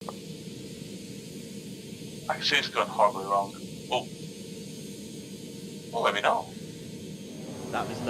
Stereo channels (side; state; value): both; identical; correlation 1.00